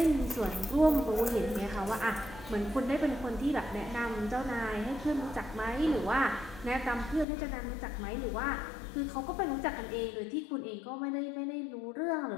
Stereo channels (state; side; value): drops out; right; at 7.2 s